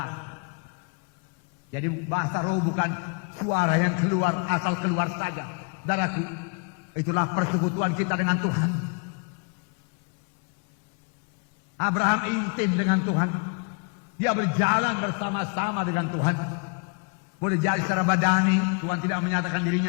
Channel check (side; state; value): right; quieter; 37.1 dB